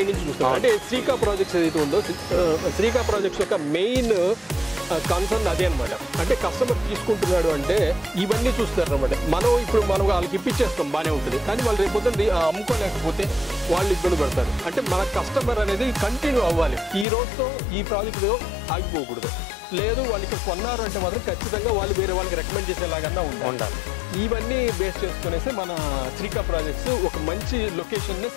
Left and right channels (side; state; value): right; drops out; at 17.1 s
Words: నుంచి చూస్తాం. అంటే శ్రీకా ప్రాజెక్ట్స్ ఏదైతే ఉందో, శ్రీకా ప్రాజెక్ట్స్ యొక్క మెయిన్ కన్సర్న్ అదే అనమాట. అంటే కస్టమర్ తీసుకుంటున్నాడు అంటే ఇవన్నీ చూస్తారు అనమాట. మనం వాళ్ళకి ఇప్పించేస్తాం, బాగానే ఉంటుంది. కానీ వాళ్ళు రేపొద్దున అమ్ముకోలేకపోతే వాళ్ళు ఇబ్బంది పడతారు. అంటే మన కస్టమర్ అనేది కంటిన్యూ అవ్వాలి. ఈ రోజుతో ఈ ప్రాజెక్టుతో ఆగిపోకూడదు. లేదు వాళ్ళు ఇక్కడ కొన్నారు అంటే మాత్రం ఖచ్చితంగా వాళ్ళు వేరే వాళ్ళకి రికమెండ్ చేసేలాగా ఉండాలి. ఇవన్నీ బేస్ చేసుకునేసి మన శ్రీకా ప్రాజెక్ట్స్ ఒక మంచి లొకేషన్నే